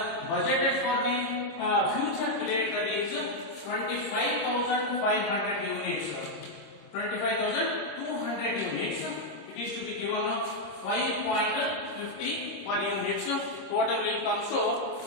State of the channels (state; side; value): late; right; 26 ms